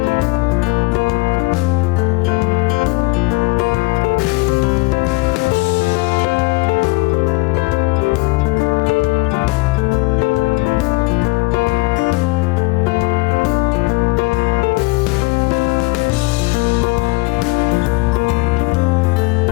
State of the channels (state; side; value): quieter; right; 24.8 dB